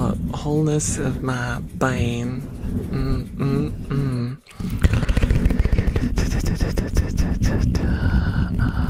wholeness of my being.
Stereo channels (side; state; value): both; identical; correlation 1.00